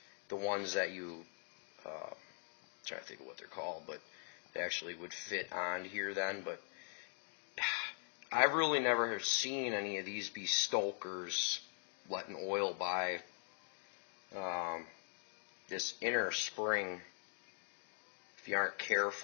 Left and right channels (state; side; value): silent; right; 50 dB below the other